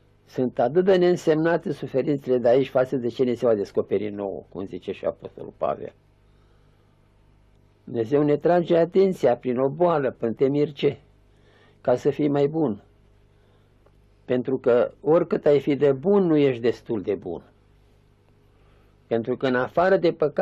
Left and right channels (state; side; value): identical; both; correlation 1.00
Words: Sunt atât de neînsemnate suferințele de aici față de ce ne se va descoperi nouă, cum zice și Apostolul Pavel. Dumnezeu ne trage atenția prin o boală, prin temirce, ca să fii mai bun. Pentru că oricât ai fi de bun, nu ești destul de bun. Pentru că în afară de